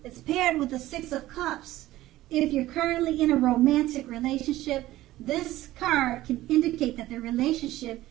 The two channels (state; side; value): quieter; left; 15.9 dB